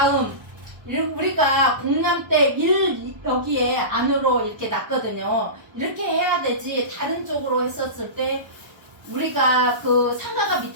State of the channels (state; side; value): late; left; 1.0 ms